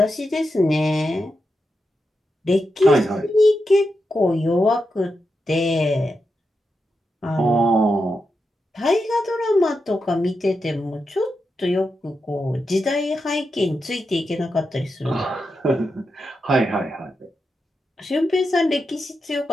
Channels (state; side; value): normal; both; correlation 0.87